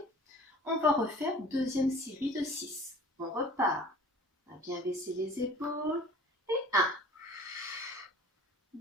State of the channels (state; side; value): normal; both; correlation 0.46